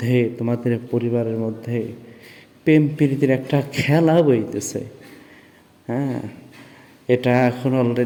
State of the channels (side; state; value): both; identical; correlation 1.00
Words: তোমাদের পরিবারের মধ্যে প্রেম প্রীতির একটা খেলা বইতেছে। হ্যাঁ, এটা এখন